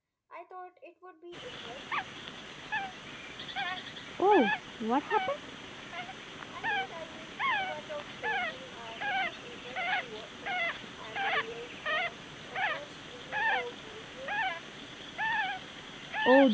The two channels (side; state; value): both; identical; correlation 1.00